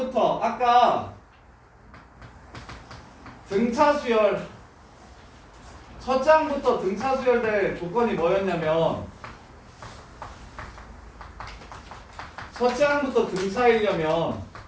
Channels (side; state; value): both; identical; correlation 1.00